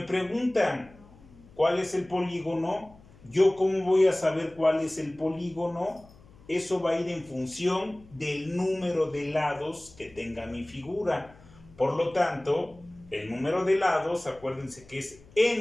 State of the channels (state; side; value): noise; left; hum, 24 dB below the sound